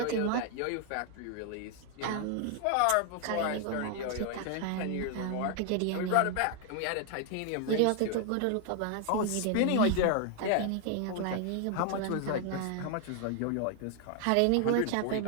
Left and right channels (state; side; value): different; both; correlation 0.00